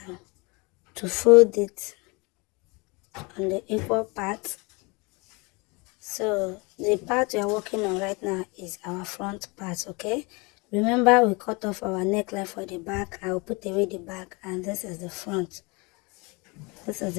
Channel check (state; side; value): quieter; right; 27.8 dB